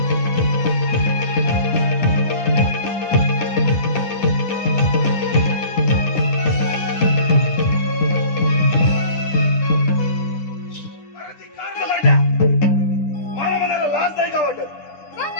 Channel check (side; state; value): right; late; 10 ms